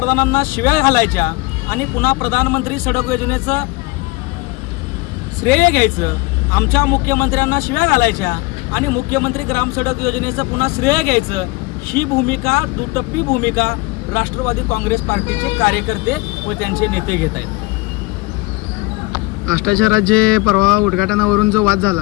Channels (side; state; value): right; quieter; 23.9 dB